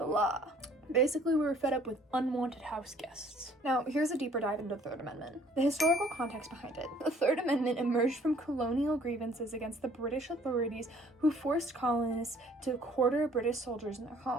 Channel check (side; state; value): both; normal; correlation 0.58